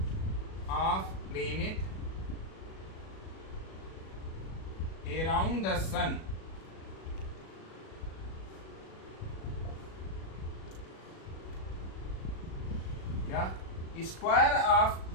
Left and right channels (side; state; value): right; late; 37 ms